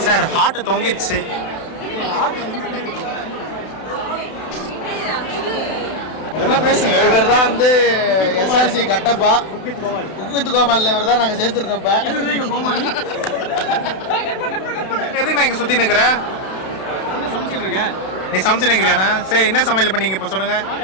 சார். ஹார்ட் தொங்கிடுச்சு. என்ன பேசுங்க. இவர் தான் வந்து எஸ்ஆர்சி கட்டப்பா குக்வித் கோமாளி. இவர் தான் நாங்கள் சேர்த்துருக்கோம்ப்பா. எதுக்கு நான் இங்கே சுற்றி நிற்கிறேன்? நீ சமைச்சு நிற்கிறியாண்ணா? சரி, என்ன சமையல் பண்ணீங்க இப்போ சொல்லுங்க.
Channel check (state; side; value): late; right; 32 ms